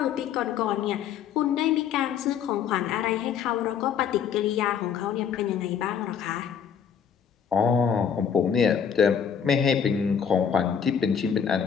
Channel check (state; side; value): quieter; right; 7.7 dB